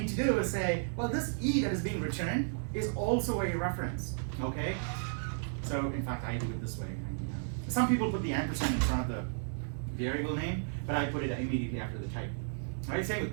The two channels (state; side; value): silent; left; digital silence